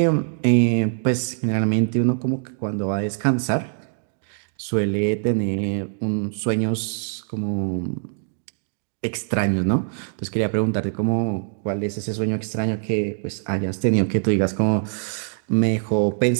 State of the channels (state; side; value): silent; left; digital silence